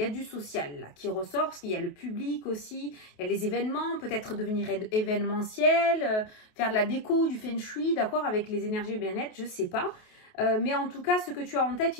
a du social là qui ressort parce qu'il y a le public aussi, il y a les événements, peut-être devenir événementiel, faire de la déco, du feng shui, d'accord, avec les énergies bien-être, je sais pas. Mais en tout cas, ce que tu as en tête,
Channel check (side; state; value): right; late; 28 ms